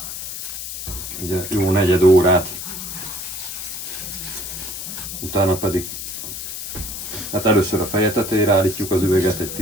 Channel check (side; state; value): left; noise; hiss, 7 dB below the sound